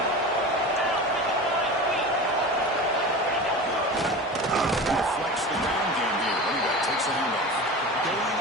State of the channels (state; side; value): normal; both; correlation 0.31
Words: Deflects the ground game here. Running back takes the handoff. Going